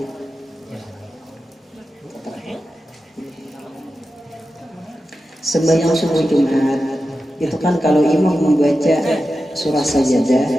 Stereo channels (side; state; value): both; normal; correlation 0.92